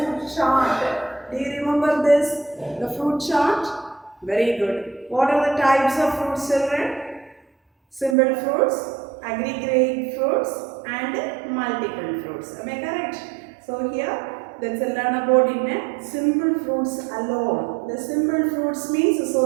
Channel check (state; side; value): drops out; left; at 8.2 s